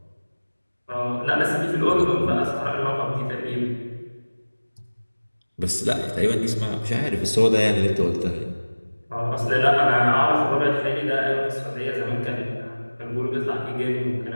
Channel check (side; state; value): both; inverted; correlation -1.00